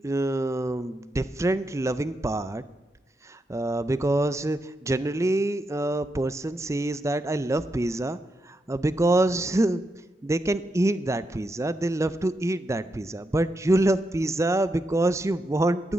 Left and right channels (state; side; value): normal; both; correlation 0.84